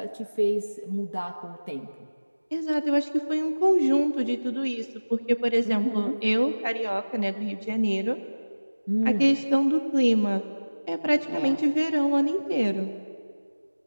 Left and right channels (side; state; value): both; inverted; correlation -1.00